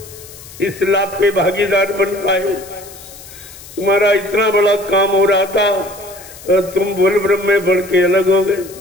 इस लाभ के भागीदार बन पाए? तुम्हारा इतना बड़ा काम हो रहा था और तुम बोल ब्रह्म में बढ़ के अलग हो गए,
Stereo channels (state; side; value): noise; left; hiss, 18 dB below the sound